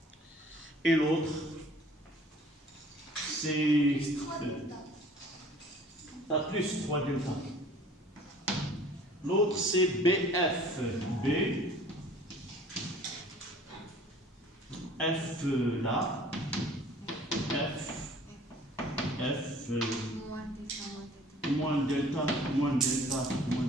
Et l'autre, c'est tu as plus 3 delta. L'autre, c'est BF. B. F là. F. F. Moins delta, moins delta, moins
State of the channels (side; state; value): both; normal; correlation 0.51